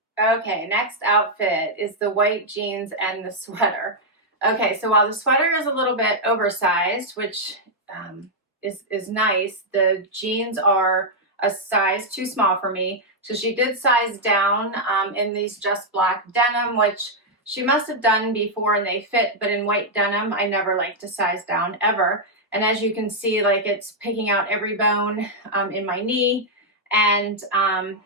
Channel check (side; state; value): both; normal; correlation -0.04